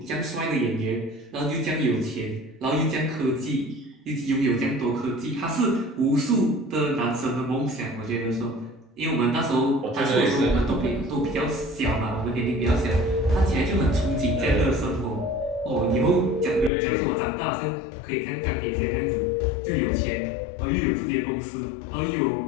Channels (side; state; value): right; drops out; at 16.7 s